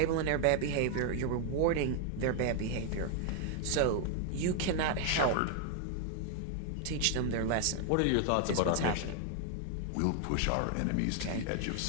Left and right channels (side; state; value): both; different; correlation 0.00